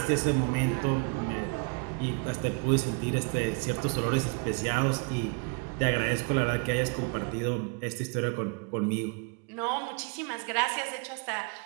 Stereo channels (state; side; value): quieter; left; 33.7 dB